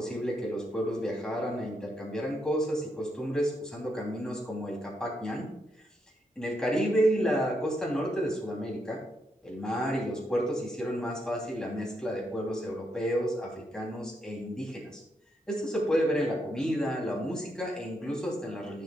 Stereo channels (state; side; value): normal; both; correlation 0.80